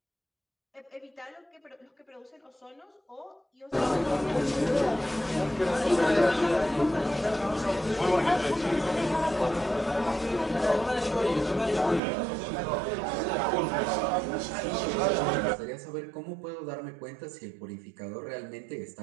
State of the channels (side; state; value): left; drops out; at 12.0 s